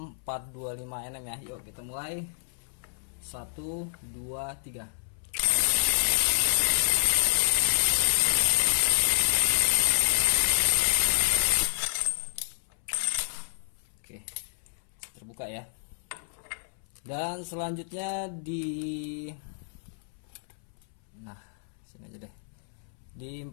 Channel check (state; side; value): silent; right; 58 dB below the other